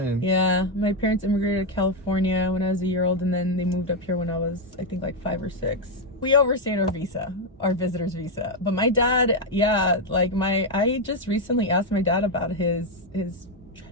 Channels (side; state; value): both; normal; correlation 0.03